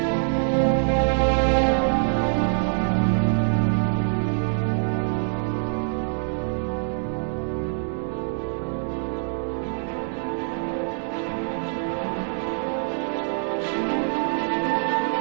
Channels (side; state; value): left; silent; digital silence